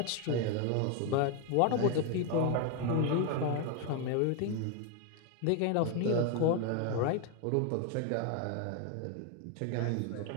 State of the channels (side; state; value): both; different; correlation 0.01